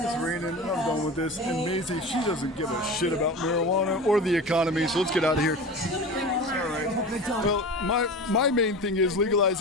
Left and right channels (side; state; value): both; normal; correlation 0.31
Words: raining. I'm done with this. And Maisie, she doesn't give a shit about marijuana or the economy, so let's get out of here. All right. Well, my main thing is